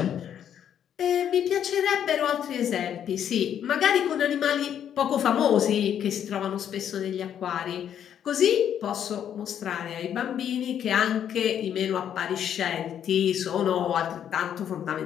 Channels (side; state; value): right; quieter; 9.4 dB